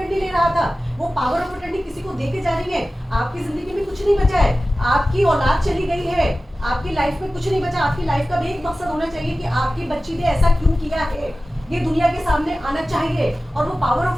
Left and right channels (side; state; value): both; normal; correlation 0.96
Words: ले रहा था, वो पावर ऑफ अटर्नी किसी को देके जा रही है। आपकी जिंदगी में कुछ नहीं बचा है, आपकी औलाद चली गई है, आपकी लाइफ में कुछ नहीं बचा। आपकी लाइफ का भी एक मकसद होना चाहिए कि आपकी बच्ची ने ऐसा क्यों किया है, ये दुनिया के सामने आना चाहिए। और वो पावर